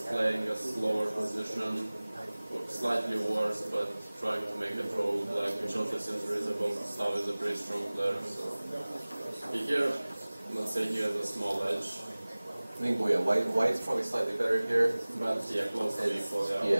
playing a slower position, slightly worse, but trying to make a draw with black, which also seems reasonable. Stav is a pretty strong player, so here, let's say he has a small edge. I think White's probably slightly better here. But yeah, close to equal, yeah,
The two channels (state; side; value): inverted; both; correlation -0.99